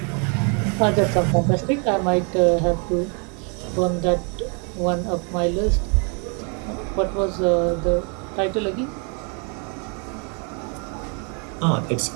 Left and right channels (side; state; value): left; quieter; 37.2 dB